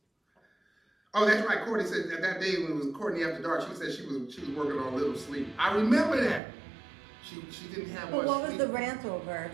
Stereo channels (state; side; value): drops out; left; at 6.4 s